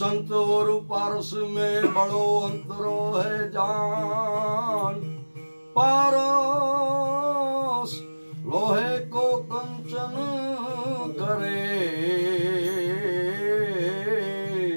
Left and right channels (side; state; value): both; inverted; correlation -1.00